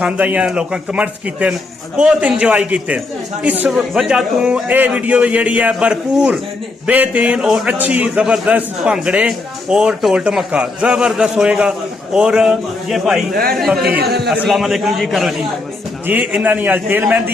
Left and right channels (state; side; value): quieter; right; 3.3 dB